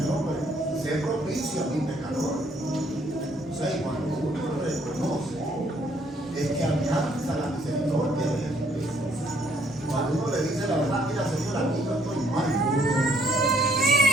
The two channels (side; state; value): both; normal; correlation 0.66